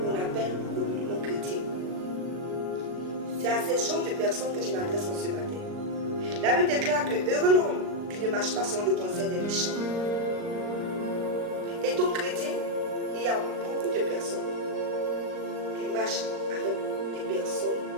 on appelle communément chrétien. C'est à ces genres de personnes que je m'adresse en ce matin. La Bible déclare que heureux l'homme qui ne marche pas selon le conseil des méchants. Et donc chrétien, il y a beaucoup de personnes qui marchent avec des personnes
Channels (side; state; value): left; late; 39 ms